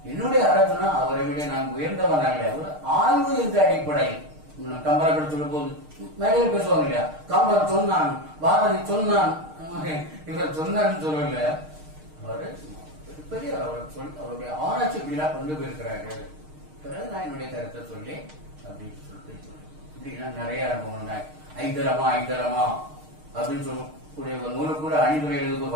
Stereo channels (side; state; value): left; late; 6.5 ms